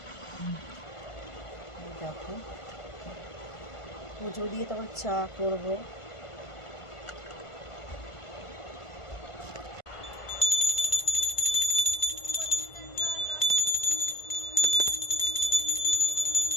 দেখো, পুজো দিয়ে তারপর চা করবো।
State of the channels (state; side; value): late; right; 1.5 ms